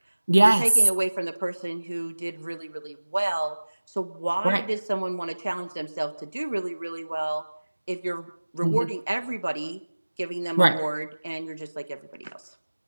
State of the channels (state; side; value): inverted; both; correlation -1.00